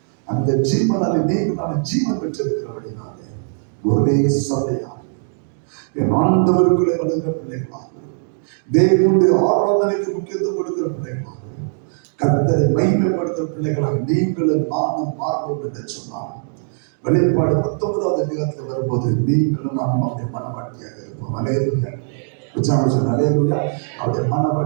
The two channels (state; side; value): silent; left; digital silence